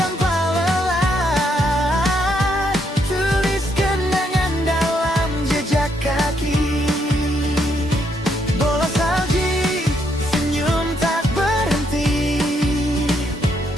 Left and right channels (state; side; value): normal; both; correlation 0.75